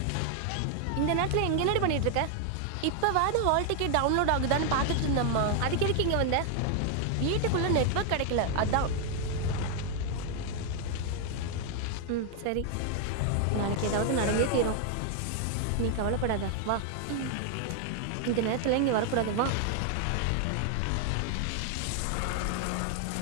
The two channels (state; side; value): different; both; correlation 0.00